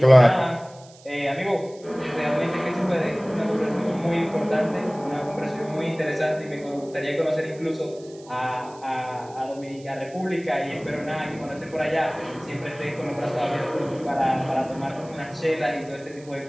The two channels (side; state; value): right; noise; hiss, 24 dB below the sound